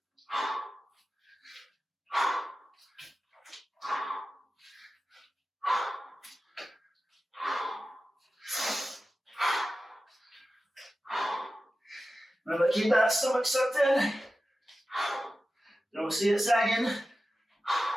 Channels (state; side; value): normal; both; correlation 0.94